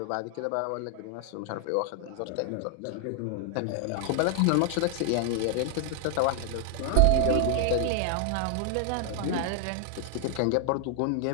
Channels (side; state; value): both; different; correlation 0.00